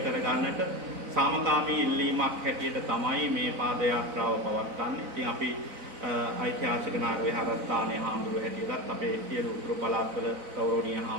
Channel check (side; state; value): left; late; 4.0 ms